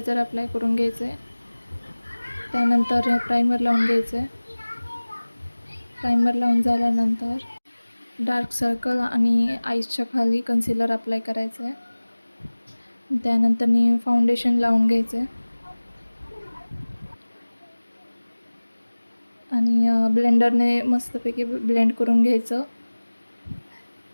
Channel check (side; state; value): both; inverted; correlation -1.00